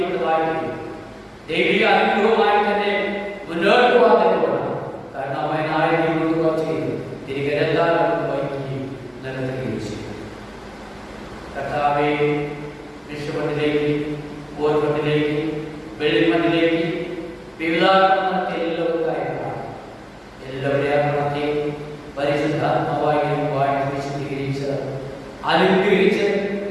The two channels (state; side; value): identical; both; correlation 1.00